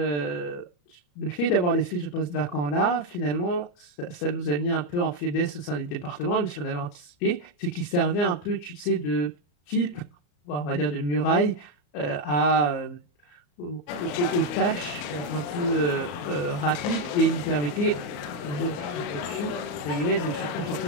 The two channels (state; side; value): late; right; 34 ms